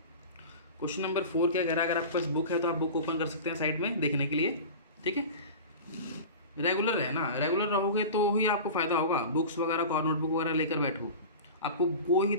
क्वेश्चन नंबर 4 क्या कह रहा है? अगर आपके पास बुक है तो आप बुक ओपन कर सकते हैं साइड में देखने के लिए, ठीक है? रेगुलर है ना, रेगुलर रहोगे तो ही आपको फ़ायदा होगा। बुक्स वगैरह और नोटबुक वगैरह लेकर बैठो, आपको कोई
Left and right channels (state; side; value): inverted; both; correlation -0.33